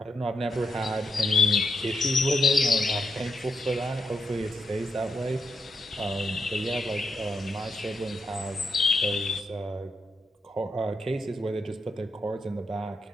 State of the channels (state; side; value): normal; both; correlation 0.82